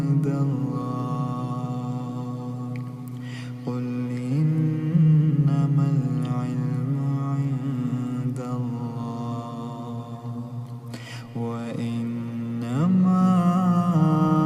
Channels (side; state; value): both; identical; correlation 1.00